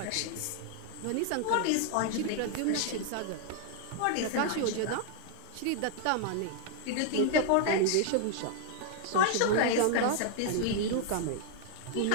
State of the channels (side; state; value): both; different; correlation 0.00